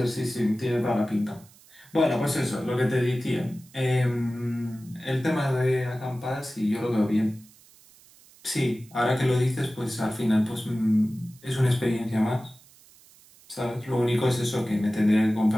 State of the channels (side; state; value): right; noise; hiss, 26 dB below the sound